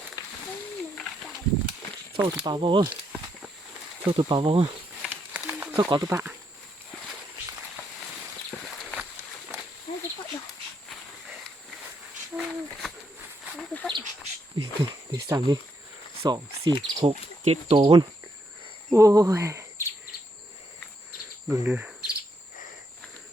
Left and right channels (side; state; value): both; normal; correlation 0.77